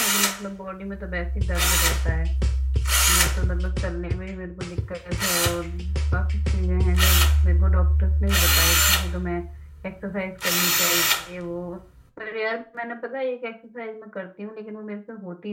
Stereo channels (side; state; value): both; identical; correlation 1.00